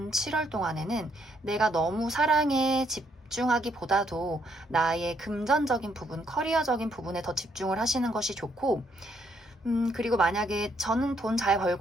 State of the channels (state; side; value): normal; both; correlation 0.73